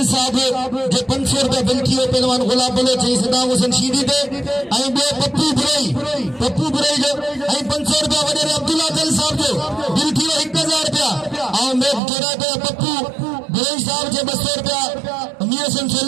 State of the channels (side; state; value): left; drops out; at 12.0 s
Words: साहब जे 500 रुपया बिल थियो पहलवान गुलाम बोले चई सदाम हुसैन शीदी दे आई बे पप्पू बुरई जो आई 500 रुपया वडे अब्दुल्ला दल साहब जो बिल थियो 1000 रुपया। और मैं जोड़ा पे पप्पू बुरई साहब जे 200 रुपया मियासन